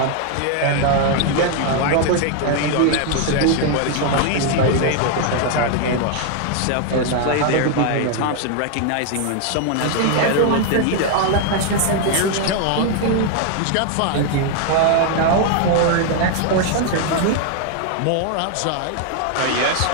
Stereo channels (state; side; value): different; both; correlation 0.00